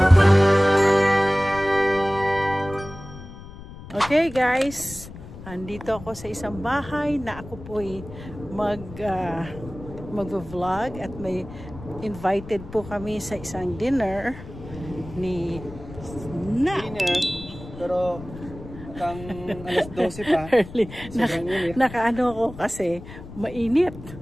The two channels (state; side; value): noise; left; rumble, 15 dB below the sound